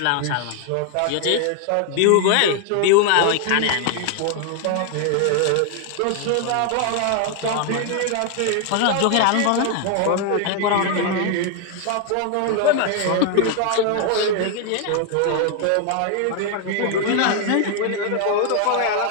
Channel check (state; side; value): different; both; correlation 0.00